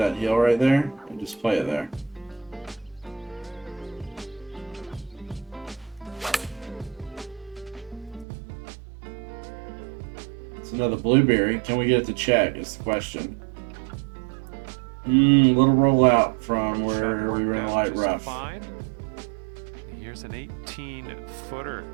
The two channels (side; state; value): left; drops out; at 8.2 s